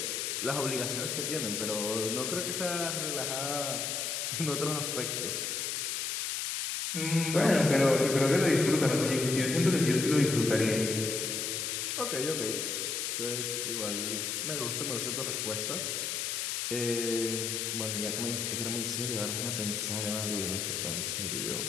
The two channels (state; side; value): noise; left; hiss, 1 dB below the sound